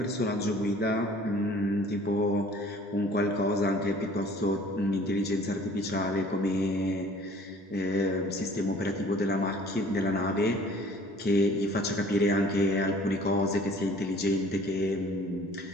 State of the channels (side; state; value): both; normal; correlation 0.52